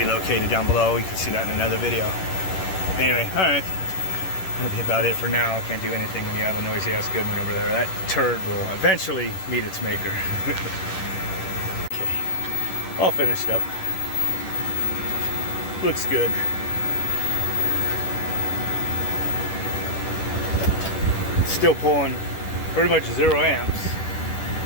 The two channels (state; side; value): late; right; 10 ms